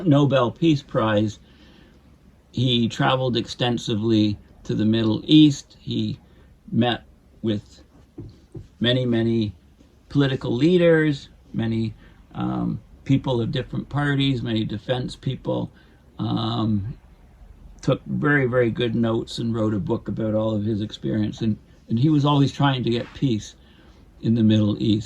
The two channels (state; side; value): identical; both; correlation 1.00